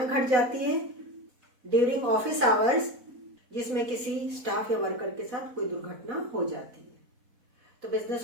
घट जाती है ड्यूरिंग ऑफिस आवर्स जिसमें किसी स्टाफ या वर्कर के साथ कोई दुर्घटना हो जाती है, तो बिजनेस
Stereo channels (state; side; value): late; left; 4.1 ms